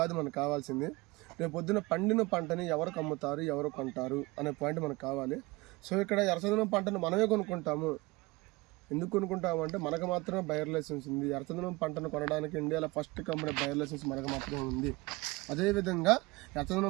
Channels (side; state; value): left; quieter; 22.9 dB